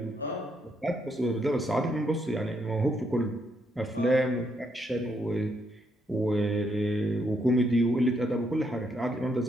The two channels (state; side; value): normal; both; correlation 0.76